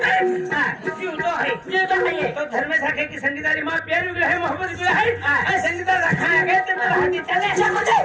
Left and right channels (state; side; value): identical; both; correlation 1.00